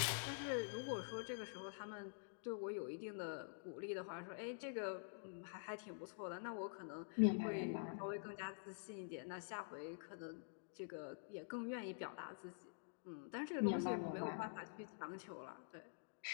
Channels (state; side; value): silent; right; digital silence